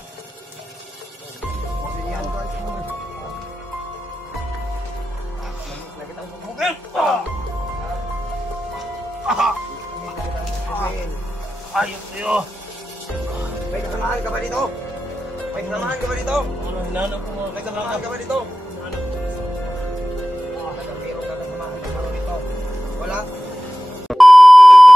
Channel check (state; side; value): normal; both; correlation 0.94